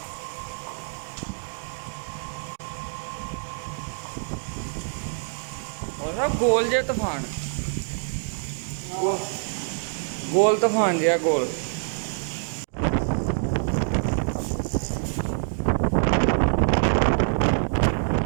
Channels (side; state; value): left; silent; digital silence